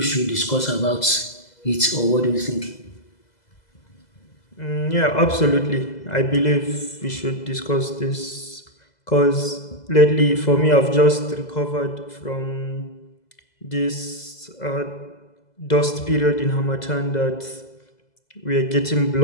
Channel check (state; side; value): late; right; 2.0 ms